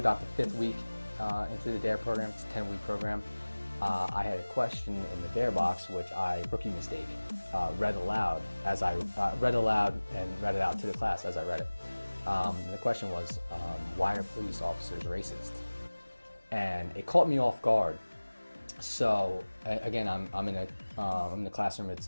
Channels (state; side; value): inverted; both; correlation -1.00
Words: the 5th week into the DARE program. It's a 10-week program. I had a question in the DARE box, which rookie mistake, read aloud and read it out to the class as I read it. The question was, why are police officers racist? And it caught me off guard. So again, I'm in the classroom. It's